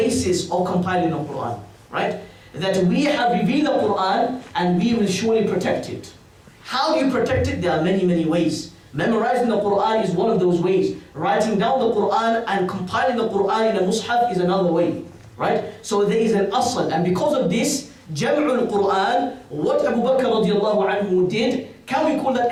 of compiling the Quran, right? That we have revealed the Quran and we will surely protect it. How do you protect it? There are many, many ways. Memorizing the Quran is one of those ways. Writing down the Quran and compiling the Quran in a mushaf is another way, right? So there is an asl, and because of this, Jam'ul Quran, what Abu Bakr radiallahu anhu did, can we call that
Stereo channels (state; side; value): identical; both; correlation 1.00